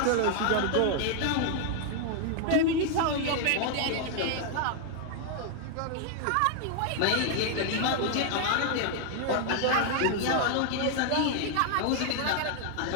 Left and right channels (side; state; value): both; different; correlation 0.00